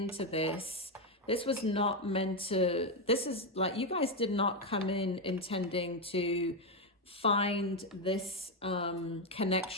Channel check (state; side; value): normal; both; correlation 0.06